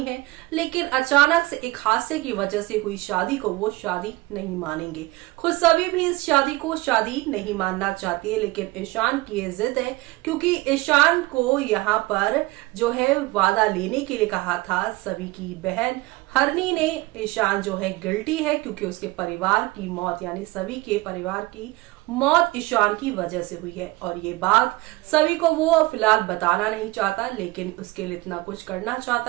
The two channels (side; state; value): left; quieter; 21.0 dB